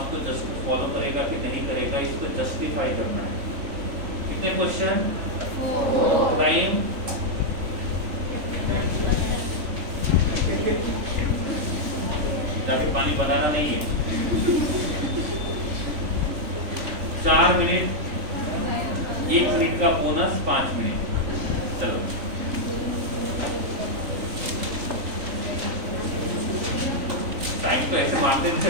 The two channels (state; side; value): late; left; 3.5 ms